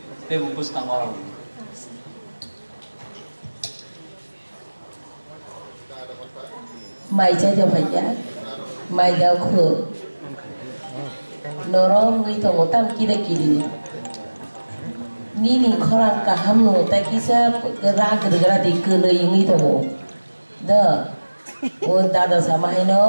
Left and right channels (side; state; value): both; inverted; correlation -1.00